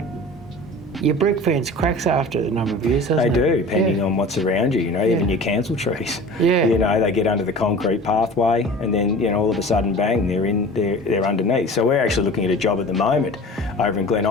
your brick fence cracks after a number of years, doesn't it? They do, depending on what's around you, even your council trees. They get under the concrete pathway and then, all of a sudden, bang, they're underneath. So we're actually looking at a job at the moment over in Glen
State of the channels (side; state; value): both; normal; correlation 0.39